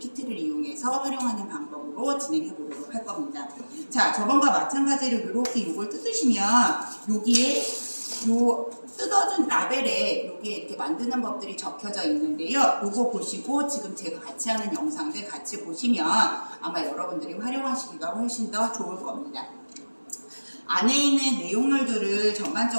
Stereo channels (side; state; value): both; inverted; correlation -1.00